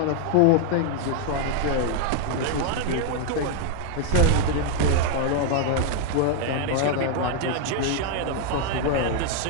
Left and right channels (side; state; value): both; different; correlation 0.00